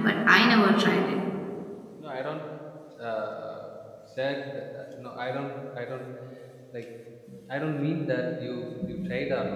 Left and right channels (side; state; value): both; identical; correlation 1.00